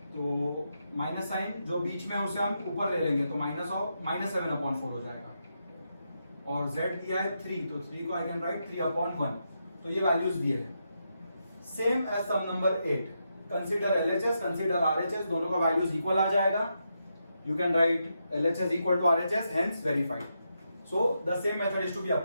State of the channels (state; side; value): inverted; both; correlation -0.83